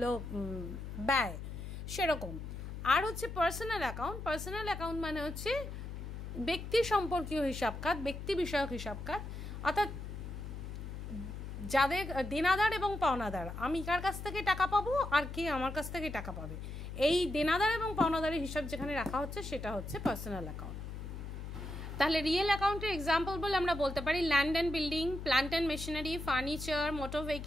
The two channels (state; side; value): noise; left; hum, 8 dB below the sound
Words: ব্যয়, সেরকম। আর হচ্ছে পার্সোনাল অ্যাকাউন্ট মানে হচ্ছে ব্যক্তি সম্পর্কীয় হিসাব খাত, ব্যক্তি বিষয়ক হিসাব খাত। অর্থাৎ যাদের দেনাদার এবং পাওনাদার, আমি কার কাছ থেকে টাকা পাবো আর কে আমার কাছ থেকে টাকা পাবে, এই দেনাদার এবং পাওনাদারের হিসাব যেখানে রাখা হচ্ছে সেটা হচ্ছে পার্সোনাল অ্যাকাউন্ট। তাহলে রিয়েল অ্যাকাউন্টের এক্সাম্পল বলে আমরা বলতে পারি land and building, plant and machinery, furniture, motor